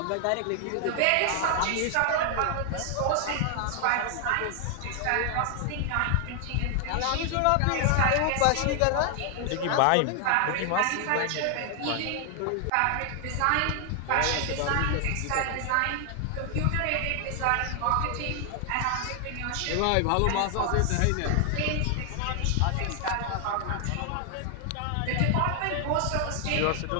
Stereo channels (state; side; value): different; both; correlation 0.00